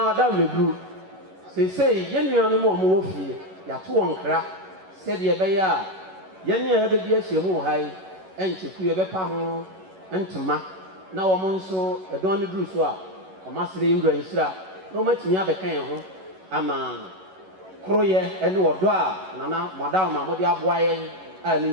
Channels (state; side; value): late; left; 11 ms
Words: wadaw meguru sei ye nuanu mo wo fie ya to wonkra se de be ya ye ne ya be bi ahyemu hai encheku ye bepa ho ntoma na wo mo nso edon ne duru so a omasere yewura nhira na omatimi abekan ho ama kroye ene wodo a nana madam ma mo de aboa ye a ne